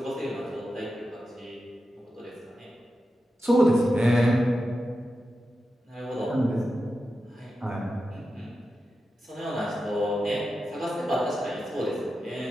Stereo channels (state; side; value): normal; both; correlation 0.90